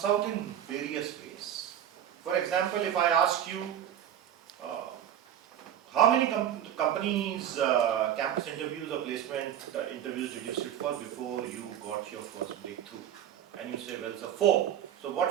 out in various ways. For example, if I ask you, how many companies, campus interviews or placement interviews did you sit for before you got your first breakthrough? And you say, well, sir, 4. So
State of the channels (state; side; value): quieter; left; 10.3 dB